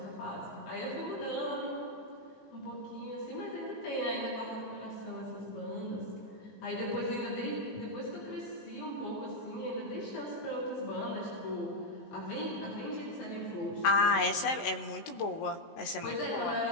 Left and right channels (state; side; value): late; right; 19 ms